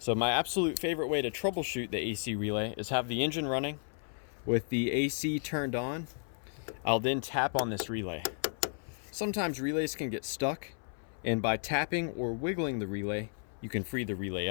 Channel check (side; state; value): right; silent; 55 dB below the other